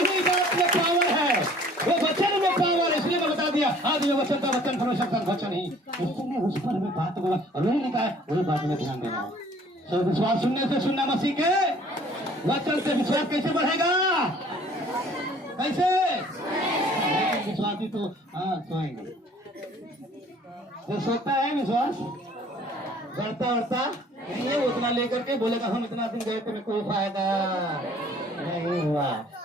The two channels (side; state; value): both; normal; correlation 0.54